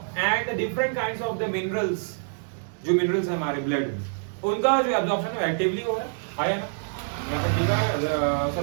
the different kinds of the minerals, जो मिनरल्स है हमारे ब्लड में, उनका जो एब्जॉर्प्शन है एक्टिवली हो रहा है ना। यहाँ पर लिखा है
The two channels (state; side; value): silent; left; digital silence